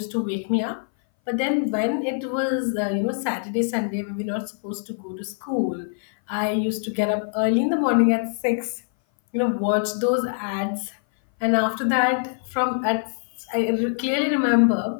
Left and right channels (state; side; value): silent; right; 59 dB below the other